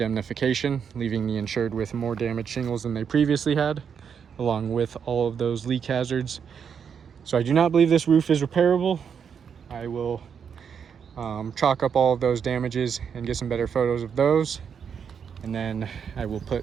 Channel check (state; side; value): quieter; left; 7.1 dB